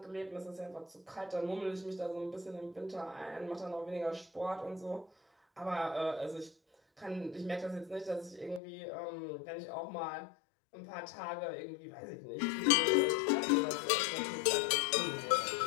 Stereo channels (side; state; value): right; drops out; at 8.6 s